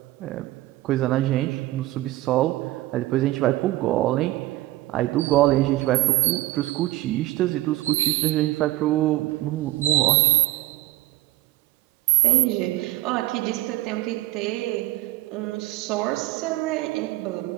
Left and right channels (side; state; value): left; quieter; 17.1 dB